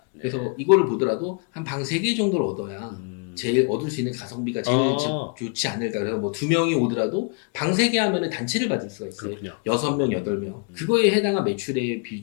네. 그래서 이거를 보더라도 한 방 3개 정도를 얻어야 제일 얻을 수 있는 가성비가 제일 좋지 않을까. 그래서 뭐 2명이 오더라도 방 3개 하면은 단체를 받을 수가 있어요. 그렇군요. 6명, 8명. 그거에 해당한 매출의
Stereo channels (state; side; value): quieter; right; 34.0 dB